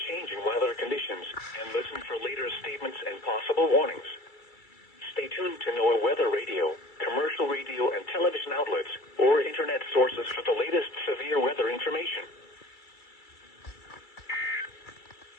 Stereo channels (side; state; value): right; late; 2.3 ms